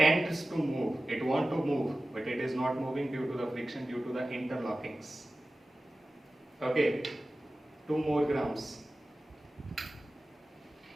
to move. It wants to move, but it is not moving due to the friction, due to the interlockings. Okay, 2 more grams.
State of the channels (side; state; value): both; normal; correlation 0.95